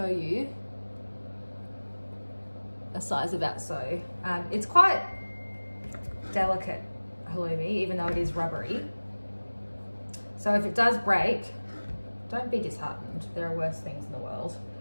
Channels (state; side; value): inverted; both; correlation -1.00